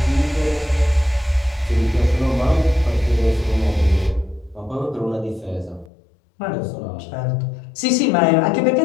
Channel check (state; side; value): drops out; right; at 5.9 s